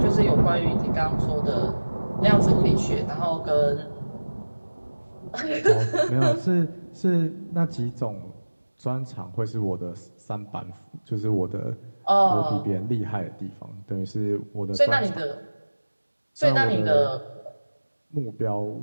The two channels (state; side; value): inverted; both; correlation -1.00